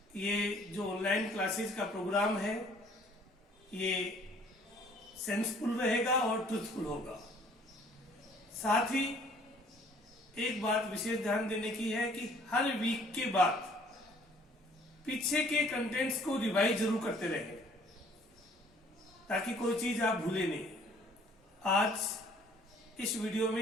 ये जो ऑनलाइन क्लासेस का प्रोग्राम है ये सेंसफुल रहेगा और ट्रूथफुल होगा। साथ ही एक बात विशेष ध्यान देने की है कि हर वीक के बाद पीछे के कंटेंट्स को रिवाइज जरूर करते रहें ताकि कोई चीज आप भूले नहीं। आज इस वीडियो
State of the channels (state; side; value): normal; both; correlation 0.57